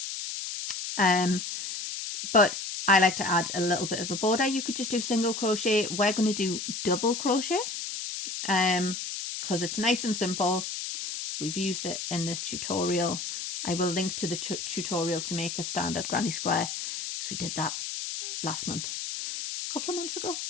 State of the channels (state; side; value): noise; left; hiss, 5 dB below the sound